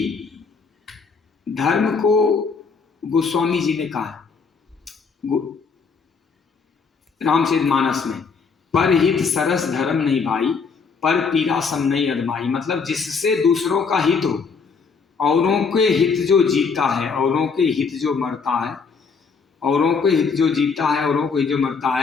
धर्म को गोस्वामी जी ने कहा रामचरितमानस में, पर हित सरस धर्म नहीं भाई, पर पीरा सम नहीं अदमाई। मतलब जिससे दूसरों का हित हो, औरों के हित जो जीता है, औरों के हित जो मरता है, औरों के हित जो जीता है, औरों को हित जो मरता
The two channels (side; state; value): right; quieter; 5.2 dB